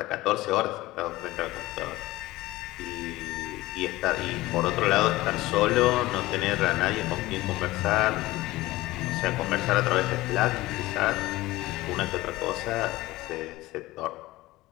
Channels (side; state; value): right; quieter; 18.5 dB